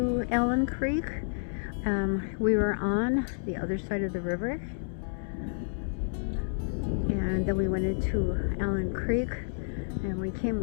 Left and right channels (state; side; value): silent; right; digital silence